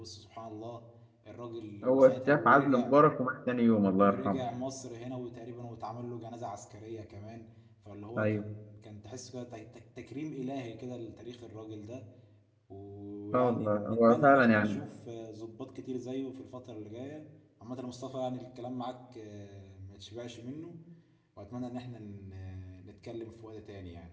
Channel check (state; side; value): identical; both; correlation 1.00